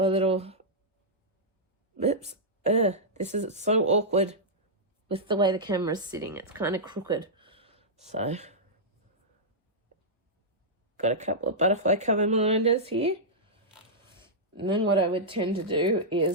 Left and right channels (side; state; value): both; normal; correlation -0.11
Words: little, oops, this is so awkward with the way the camera's sitting. It's kind of crooked. So got a couple of butterfly cover minders here. And then what I would tend to do